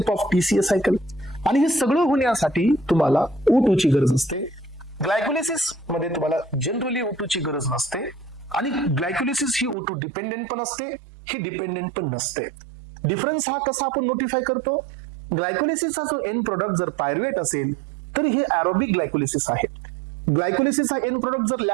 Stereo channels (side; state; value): left; drops out; at 9.8 s